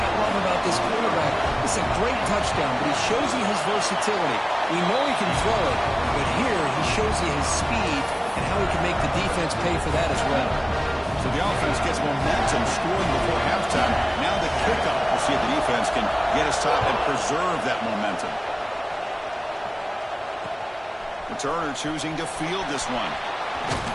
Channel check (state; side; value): identical; both; correlation 1.00